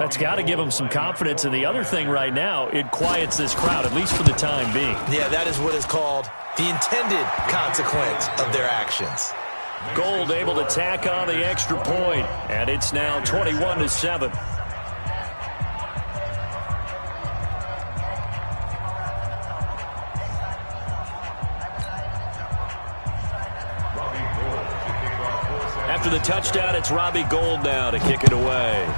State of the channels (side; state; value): both; inverted; correlation -1.00